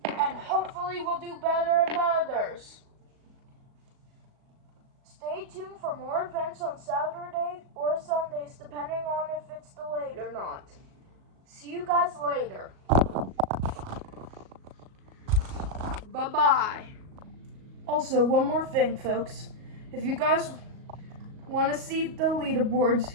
And hopefully we'll do better in the others. Stay tuned for more events on Saturday or Sundays, depending on if it's delayed or not. See you guys later. Bye-bye. Also, one more thing, folks. If you guys want to see the leaderboards,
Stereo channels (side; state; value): left; late; 38 ms